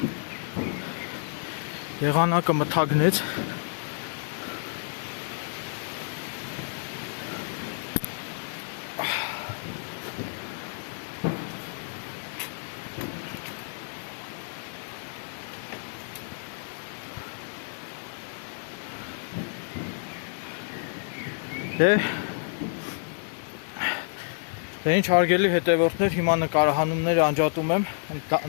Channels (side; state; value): right; silent; 59 dB below the other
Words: Եղանակը մթագնեց։ Դե ինչ հարգելի հետևորդներ, հիմա նկարահանումները անջատում եմ,